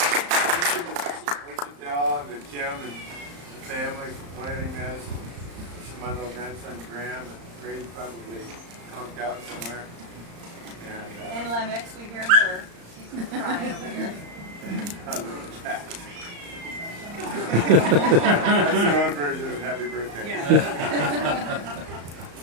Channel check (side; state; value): left; late; 35 ms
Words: And Kim and the family for planning this. This is my little grandson Graham, and Grady's probably conked out somewhere. And Lemix, we hear her. She's crying over here. A little cat. That's your own version of happy birthday. Yeah.